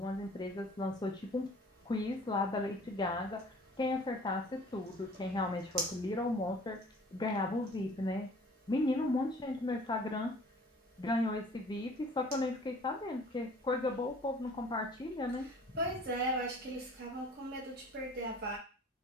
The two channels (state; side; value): normal; both; correlation 0.50